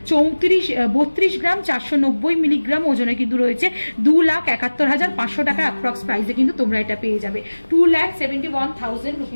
32 গ্রাম 490 মিলিগ্রাম ওজনে কিন্তু রয়েছে। 2,71,500 টাকা অ্যাপ্রক্স প্রাইসে কিন্তু তোমরা এটা পেয়ে যাবে। 2,71,000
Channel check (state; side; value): inverted; both; correlation -1.00